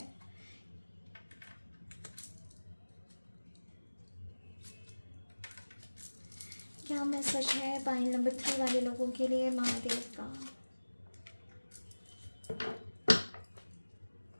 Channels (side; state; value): both; inverted; correlation -1.00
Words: क्या मैसेज है पाइल नंबर 3 वाले लोगों के लिए महादेव का।